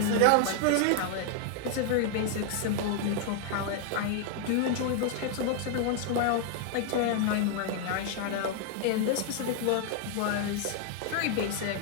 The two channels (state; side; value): different; both; correlation 0.00